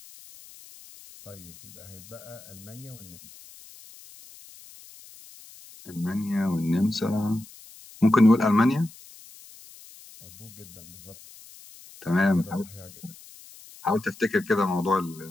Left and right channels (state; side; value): noise; left; hiss, 20 dB below the sound